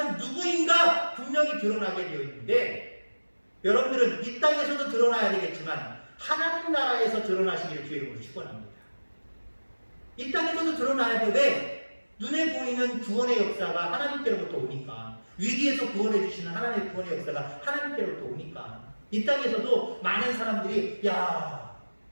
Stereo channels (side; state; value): both; inverted; correlation -1.00